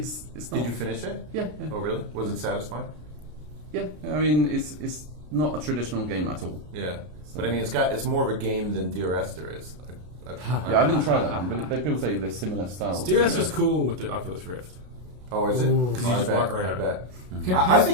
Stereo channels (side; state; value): left; late; 33 ms